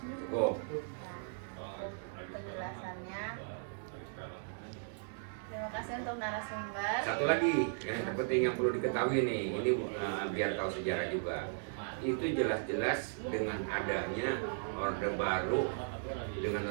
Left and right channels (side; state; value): left; silent; digital silence